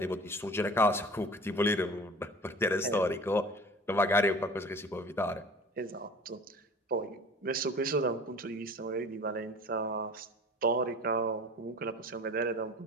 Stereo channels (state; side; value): normal; both; correlation 0.42